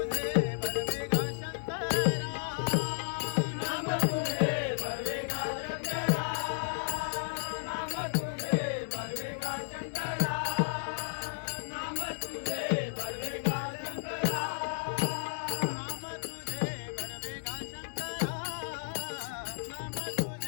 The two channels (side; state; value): right; silent; digital silence